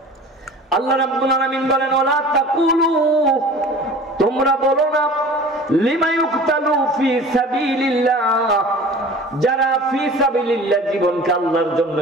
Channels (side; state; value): both; normal; correlation 0.42